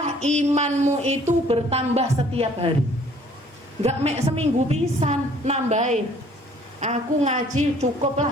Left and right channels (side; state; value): both; normal; correlation 0.57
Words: imanmu itu bertambah setiap hari. Gak mek seminggu pisan nambahin. Aku ngaji